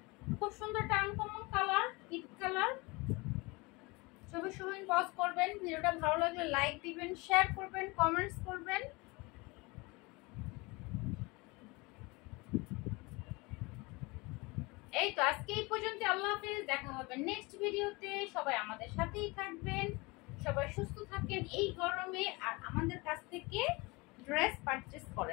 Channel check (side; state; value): right; quieter; 25.2 dB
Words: খুব সুন্দর আনকমন কালার, পিট কালার। ছবি সহ ইনবক্স করবেন। ভিডিওটা ভালো লাগলে লাইক দিবেন, শেয়ার করবেন, কমেন্টস করবেন। এই তো আজকে এই পর্যন্ত, আল্লাহ হাফেজ, দেখা হবে নেক্সট ভিডিওতে। সবাই আমাদের সাথেই থাকবেন, সবাই সুস্থ থাকেন এই গরমে, আর আমাদের কাছ থেকে ড্রেস পারচেজ